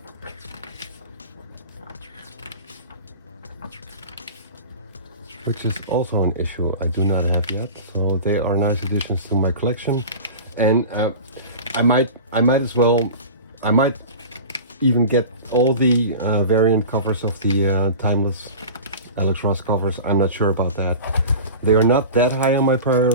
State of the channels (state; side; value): inverted; both; correlation -0.35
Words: Which is also an issue I do not have yet. So they are nice additions to my collection. And I might even get all the variant covers of the timeless Alex Ross covers. I'm not sure about that. They are not that high on my priority